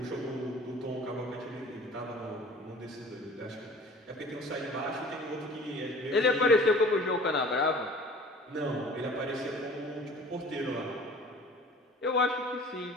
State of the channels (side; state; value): both; normal; correlation 0.46